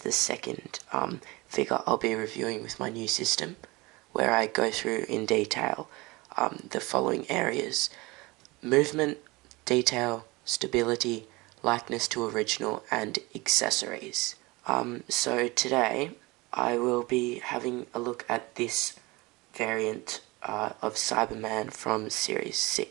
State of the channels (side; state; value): left; quieter; 23.2 dB